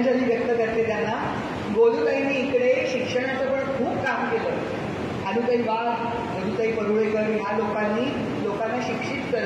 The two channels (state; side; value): identical; both; correlation 1.00